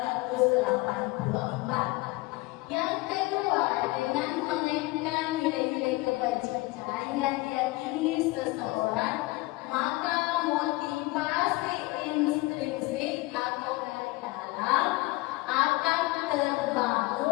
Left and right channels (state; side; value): quieter; right; 21.8 dB